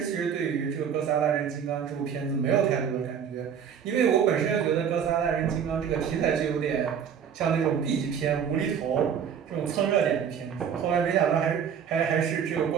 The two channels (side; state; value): left; quieter; 7.8 dB